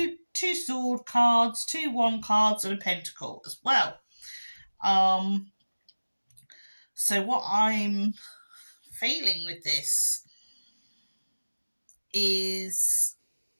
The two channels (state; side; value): inverted; both; correlation -1.00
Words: sword cards, two wand cards, and a pentacle as well. So what I'm feeling with this is